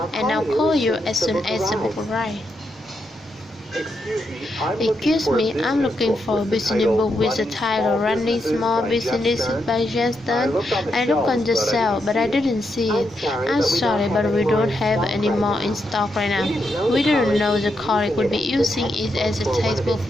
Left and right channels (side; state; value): both; normal; correlation 0.82